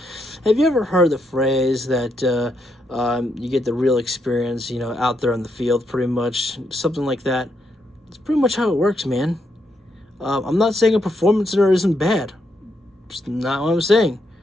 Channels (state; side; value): normal; both; correlation 0.79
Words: Have you ever heard the phrase that you get the real experience, out there on the field, pretty much? Something like that. It's pretty much how it works, man. I'm not saying a performance center isn't bad. It's not what I'm saying.